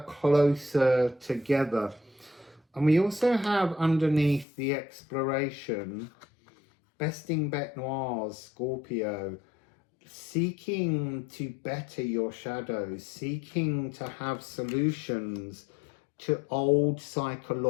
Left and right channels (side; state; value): right; drops out; at 4.5 s